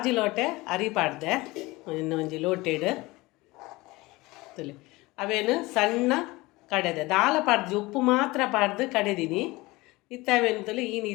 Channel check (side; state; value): right; quieter; 21.5 dB